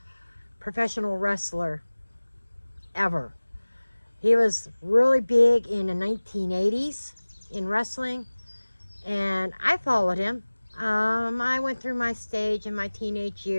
professional wrestler ever. He was really big in the 1980s in wrestling, and I followed him. I went through my stage in my teenage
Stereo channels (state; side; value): inverted; both; correlation -1.00